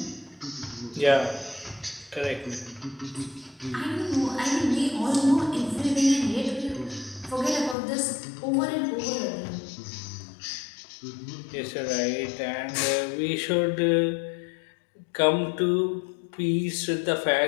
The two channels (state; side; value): drops out; right; at 7.8 s